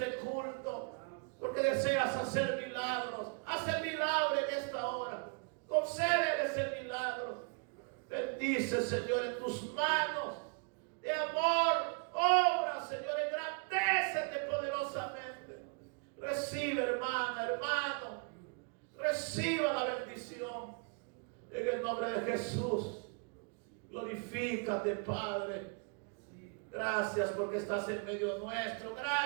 culto, porque deseas hacer milagros. Haz el milagro en esta hora. Concédeles el milagro. Bendice, Señor, en tus manos de amor. Obra, Señor, engrandécete poderosamente. Recibe, hermana, hermano. Reciba la bendición. En el nombre de Jesús. Glorifícate, Padre. Gracias porque estás en medio nuestro.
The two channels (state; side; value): quieter; left; 38.0 dB